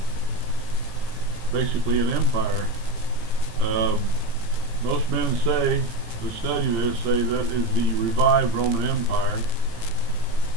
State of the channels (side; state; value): left; late; 17 ms